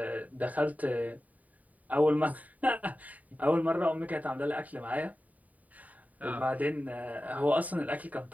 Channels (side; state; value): left; late; 0.073 ms